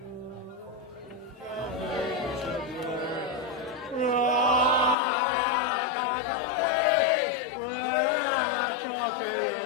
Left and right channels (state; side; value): drops out; right; at 5.0 s